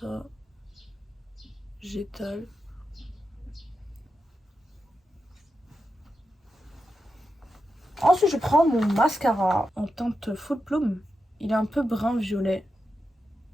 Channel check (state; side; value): normal; both; correlation 0.88